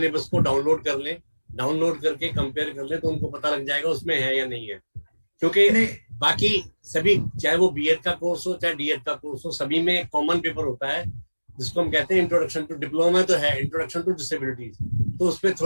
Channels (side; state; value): both; inverted; correlation -1.00